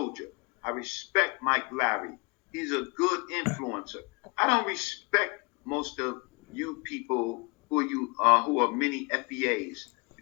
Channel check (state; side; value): quieter; right; 30.9 dB